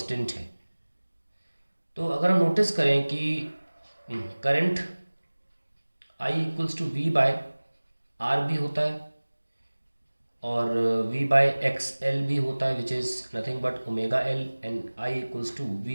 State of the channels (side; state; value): both; inverted; correlation -1.00